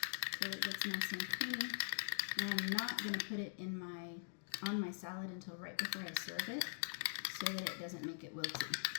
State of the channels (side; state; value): right; silent; digital silence